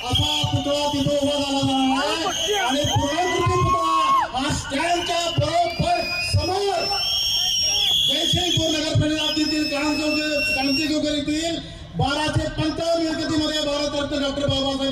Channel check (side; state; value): both; identical; correlation 1.00